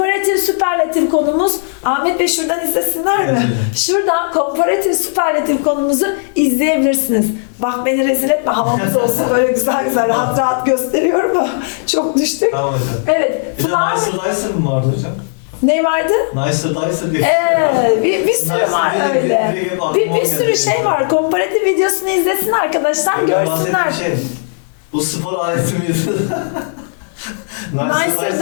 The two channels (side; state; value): right; silent; digital silence